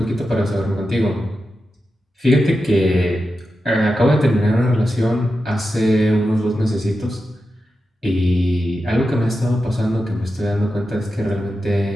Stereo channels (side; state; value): both; normal; correlation 0.90